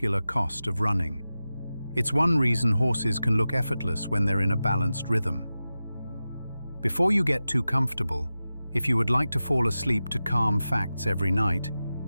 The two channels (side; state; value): both; inverted; correlation -0.94